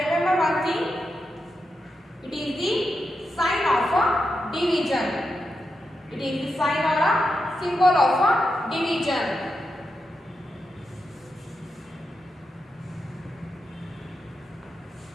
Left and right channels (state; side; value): normal; both; correlation 0.87